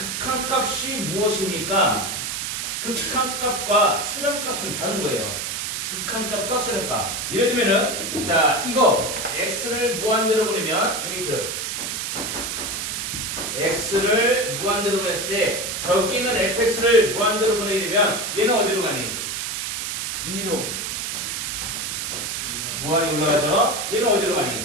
무엇입니까? 극한값과 수렴값은 다른 거예요. 극한값과 수렴값. 예를 들면은 자 이거 x를 무한대로 보내면 여기 x를 무한대로 보냈을 때 저기 있는 fx를 무한대로 보내게 되면 얘는 어디로 가니? 위로 무한이 올라가죠? 얘는 어디로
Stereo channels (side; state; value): right; noise; hiss, 3 dB below the sound